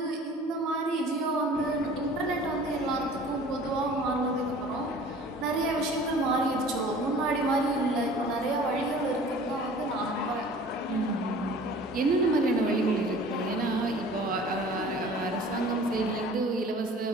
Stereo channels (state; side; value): normal; both; correlation 0.46